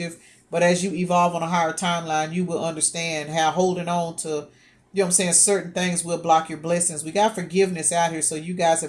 But as you evolve on a higher timeline, you will understand how holding on to, you know what I'm saying, certain things will block your blessings. We got forgiveness out here, so you guys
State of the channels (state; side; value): identical; both; correlation 1.00